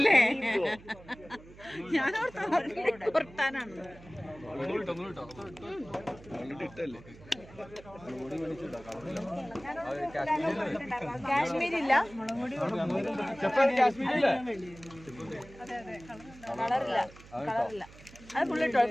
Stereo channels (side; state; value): right; noise; hum, 20 dB below the sound